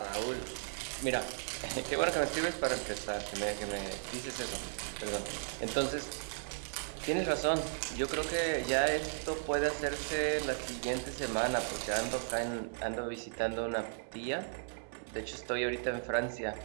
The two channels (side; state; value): left; silent; digital silence